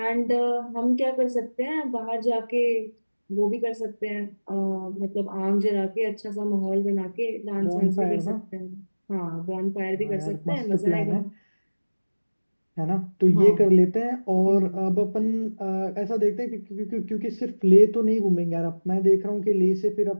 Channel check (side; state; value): both; inverted; correlation -1.00